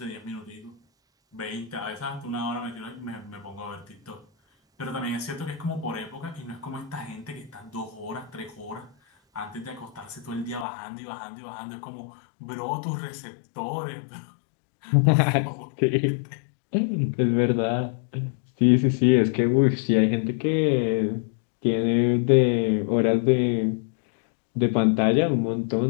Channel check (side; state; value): right; drops out; at 10.7 s